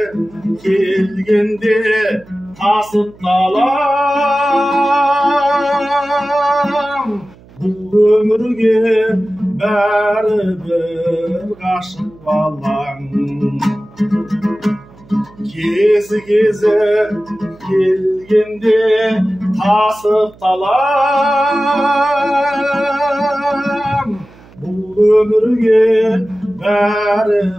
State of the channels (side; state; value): right; noise; hum, 25 dB below the sound